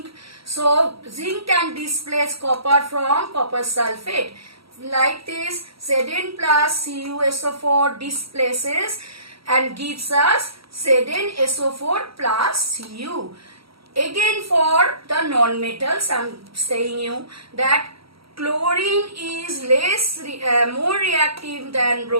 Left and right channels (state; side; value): late; left; 0.75 ms